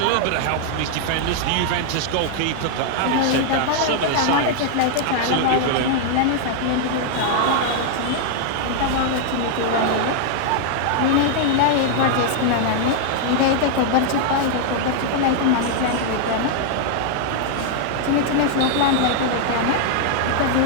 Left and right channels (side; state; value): both; different; correlation -0.01